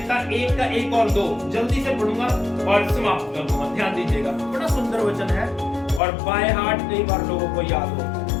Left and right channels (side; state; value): right; drops out; at 6.0 s